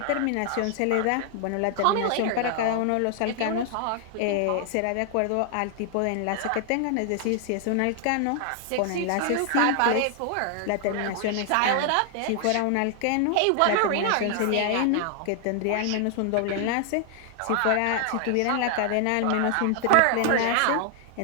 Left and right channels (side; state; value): both; different; correlation 0.00